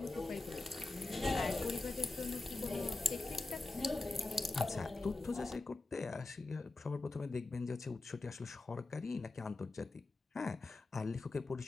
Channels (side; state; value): right; quieter; 3.2 dB